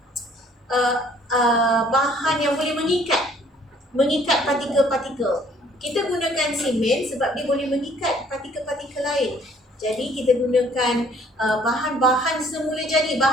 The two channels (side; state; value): both; normal; correlation 0.59